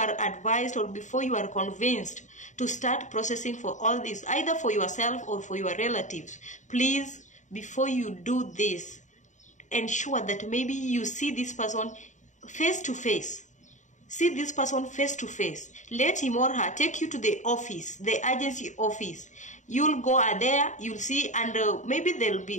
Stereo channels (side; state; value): right; late; 0.35 ms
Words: advised or before you are convinced to start processing for all this, either for yourself or for your relatives. Please, before you do this, ensure that maybe you see this person face to face. See this person face to face. Let him or her take you to the office, the agency office. You'll go there, you'll see, and maybe they'll